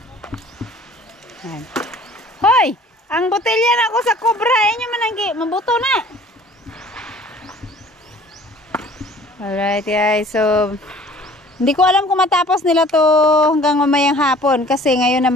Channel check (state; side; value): normal; both; correlation 0.51